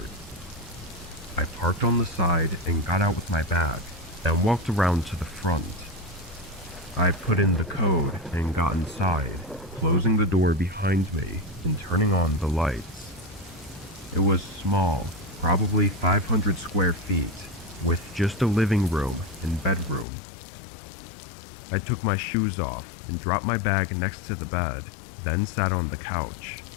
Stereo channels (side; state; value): right; drops out; at 20.1 s